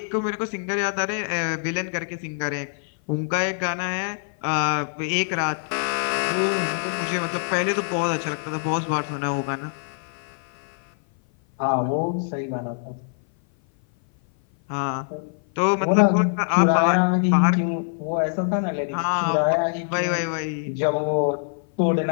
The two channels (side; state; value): right; silent; 56 dB below the other